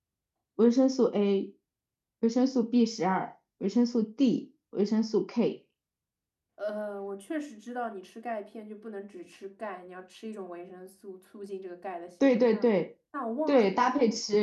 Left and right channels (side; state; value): both; identical; correlation 1.00